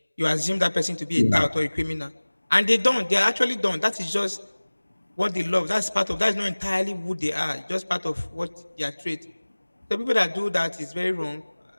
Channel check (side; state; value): both; inverted; correlation -1.00